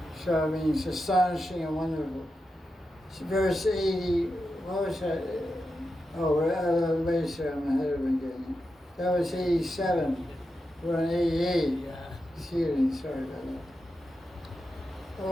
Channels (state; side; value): normal; both; correlation 0.89